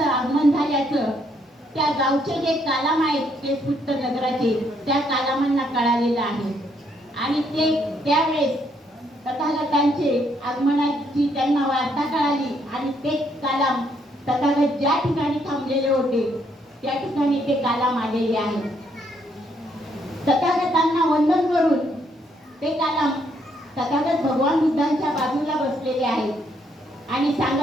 आगमन झाल्याचं त्या गावचे जे कालाम आहेत केसुट्ट नगराचे त्या कालामांना कळालेलं आहे. आणि ते त्यावेळेस तथागतांचे आगमनाची त्यांना वार्ता कळाली आणि ते कालाम तथागत ज्या ठिकाणी थांबलेले होते त्या ठिकाणी ते कालाम आलेले आहेत. तथागतांना वंदन करून ते कालाम तथागत भगवान बुद्धांच्या बाजूला बसलेले आहेत आणि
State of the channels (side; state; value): both; normal; correlation 0.72